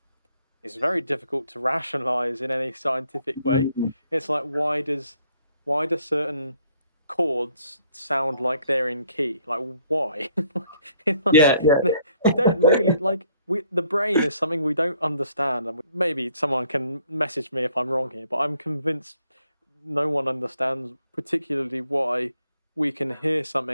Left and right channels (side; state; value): both; inverted; correlation -0.66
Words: very difficult to rationalize in any scientific way. It's like why do certain chords sound like they're in key? Like why? yeah, We don't really like the brain is something we don't understand, and maybe someone can message me if I'm wrong here, but I'm convinced no one understands particularly why we can hear